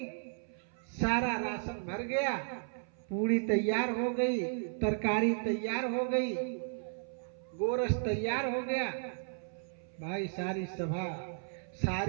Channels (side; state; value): left; silent; 55 dB below the other